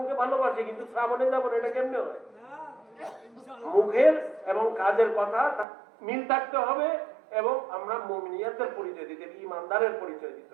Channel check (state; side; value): drops out; left; at 5.7 s